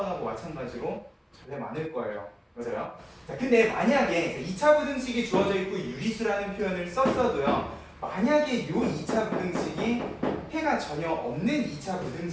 마찬가지로 전래 많을 거예요. 맞아요? 자, 근데 만약에 2차 부등식이 주어져 있고 유리수라는 표현을 썼어도요. 만약에 이 2차 부등식이 해가 전혀 없는 2차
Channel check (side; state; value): both; identical; correlation 1.00